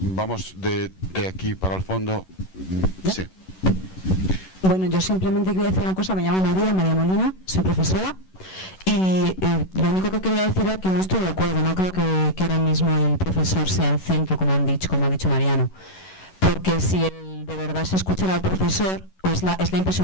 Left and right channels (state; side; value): late; right; 11 ms